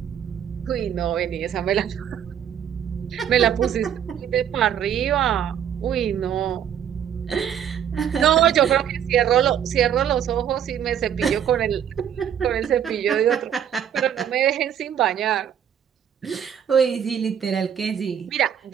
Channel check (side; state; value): left; quieter; 9.1 dB